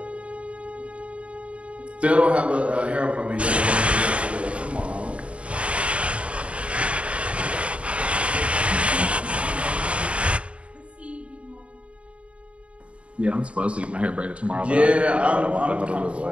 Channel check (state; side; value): late; left; 0.061 ms